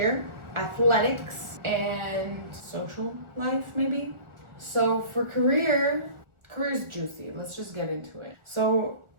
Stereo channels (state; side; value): late; left; 1.4 ms